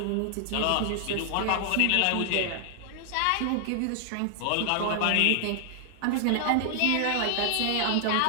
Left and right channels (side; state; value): both; different; correlation 0.00